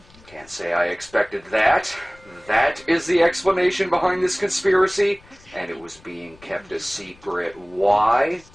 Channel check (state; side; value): noise; left; rumble, 27 dB below the sound